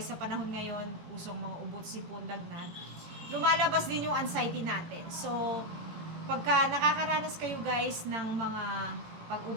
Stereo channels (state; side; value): late; left; 18 ms